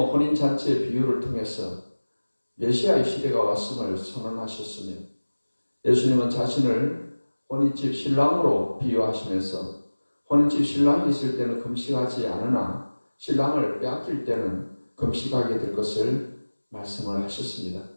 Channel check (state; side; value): inverted; both; correlation -1.00